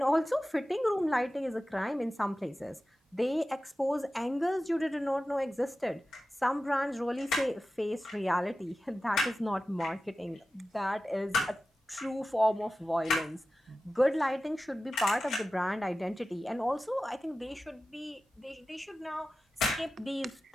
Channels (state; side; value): normal; both; correlation 0.95